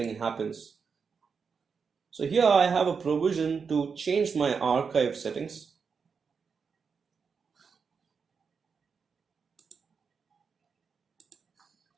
happens. So here I have a provision to change my archive settings.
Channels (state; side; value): quieter; left; 5.7 dB